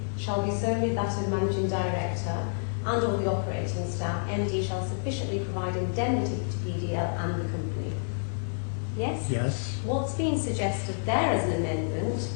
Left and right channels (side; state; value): right; silent; digital silence